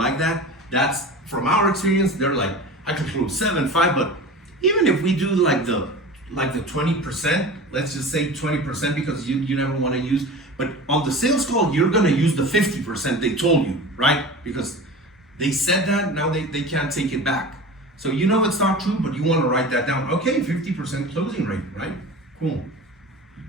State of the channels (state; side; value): normal; both; correlation 0.35